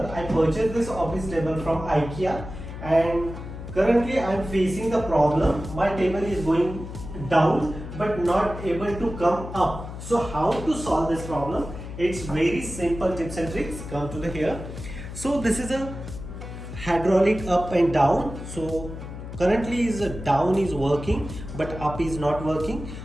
I purchased this office table from IKEA and currently I am facing the problem. My table is going down but not able to come up. So how to solve this problem? It's very simple tips and tricks. Come to the here. So this is a hydraulic up and down. So currently is down is working but up is not working.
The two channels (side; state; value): left; noise; hum, 10 dB below the sound